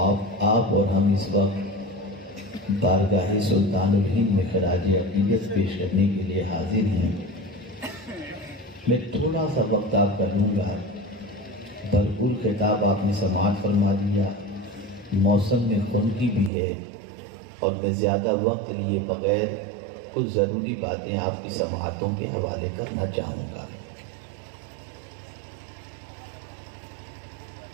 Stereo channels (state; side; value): drops out; left; at 16.5 s